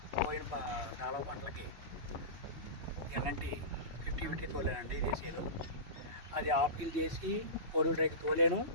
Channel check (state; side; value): late; left; 3.0 ms